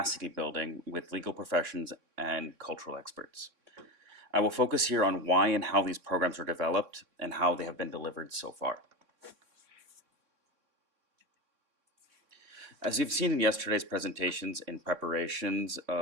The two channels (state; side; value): late; left; 3.6 ms